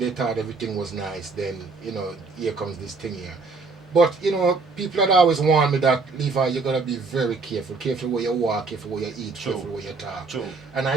thought everything was nice, then, here comes this thing here. But, people had always warned me that, Levi, you got to be very careful. Careful where you walk, careful where you eat, True. careful where you talk. True. And I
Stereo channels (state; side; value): quieter; left; 4.1 dB